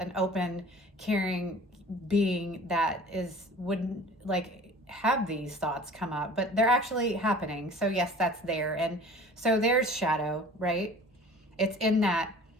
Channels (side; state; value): both; normal; correlation 0.45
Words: open, caring being that wouldn't like have these thoughts come up, but they're actually happening. So yes, that's there. And so there's shadow, right? It's in that